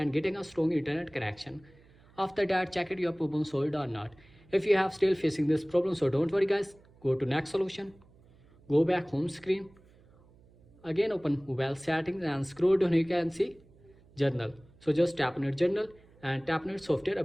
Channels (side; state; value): right; noise; hum, 28 dB below the sound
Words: getting a strong internet connection. After that, check it your problem solved or not. If you have still facing this problem, so don't worry guys, go to next solution. Go back home screen. Again open mobile settings and scroll down, you can see journal. So just tap on your journal and tap on your software